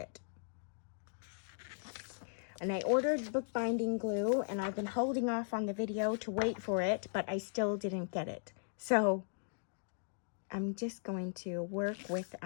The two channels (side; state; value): right; silent; digital silence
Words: And I ordered bookbinding glue, and I've been holding off on the video to wait for it, but I still didn't get it. So I'm just going to work with